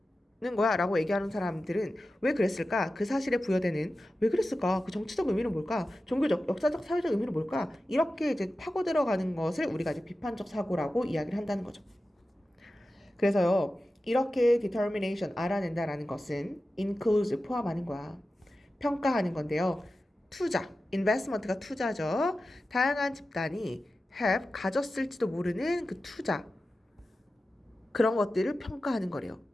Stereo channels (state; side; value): normal; both; correlation 0.94